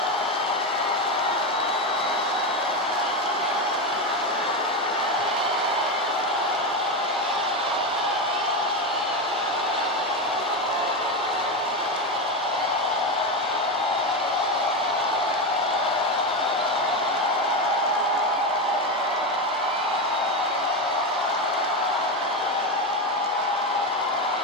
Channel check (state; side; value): normal; both; correlation 0.14